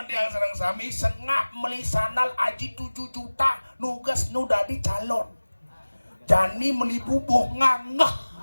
yang serang sami Sengap meli sandal aji 7 juta nugas nu dadi calon. Jani meli bubuh ngangeh.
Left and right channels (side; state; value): both; inverted; correlation -1.00